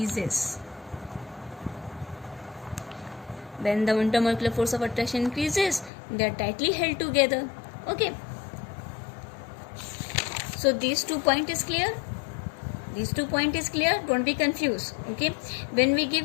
When the intermolecular force of attraction increases, they are tightly held together. Okay. So these 2 points is clear. Don't be confused. Okay. When we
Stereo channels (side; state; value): right; drops out; at 5.9 s